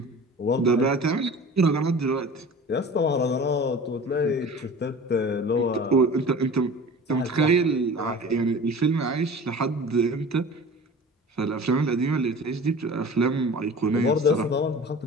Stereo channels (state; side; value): normal; both; correlation 0.39